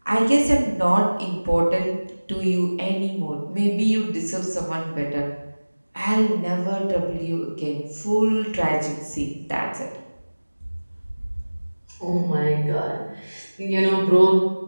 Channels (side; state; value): both; inverted; correlation -1.00